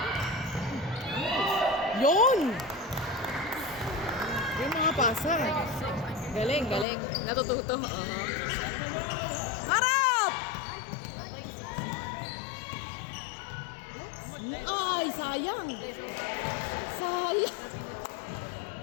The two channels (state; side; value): drops out; right; at 6.9 s